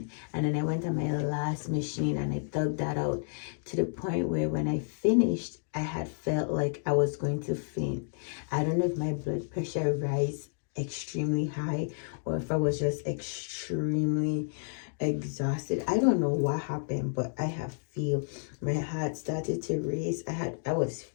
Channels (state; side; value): silent; right; digital silence